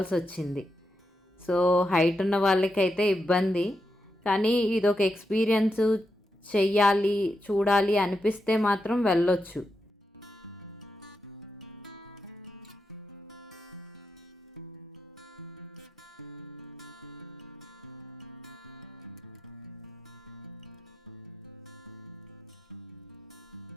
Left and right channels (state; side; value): normal; both; correlation 0.86